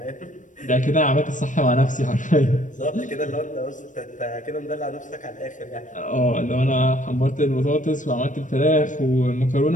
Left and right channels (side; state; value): right; late; 0.37 ms